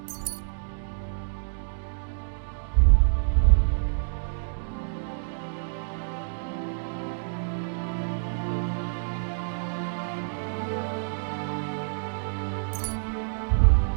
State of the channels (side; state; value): left; silent; digital silence